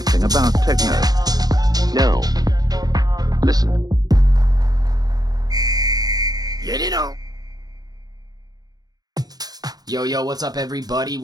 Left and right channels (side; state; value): left; late; 0.19 ms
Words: about techno? No. Listen. Get it on. Yo, what's up, everybody?